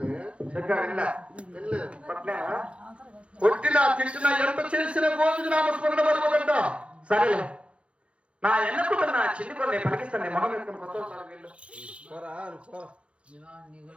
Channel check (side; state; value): left; late; 0.061 ms